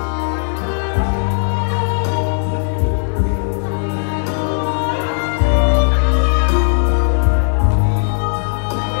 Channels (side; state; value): right; silent; 63 dB below the other